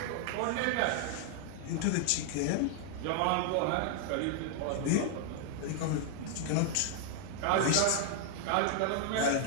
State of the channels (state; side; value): different; both; correlation 0.00